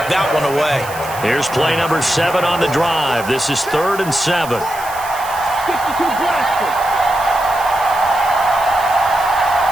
that one away. Here's play number 7 on the drive. This is 3rd and 7.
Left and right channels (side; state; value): right; noise; hiss, 15 dB below the sound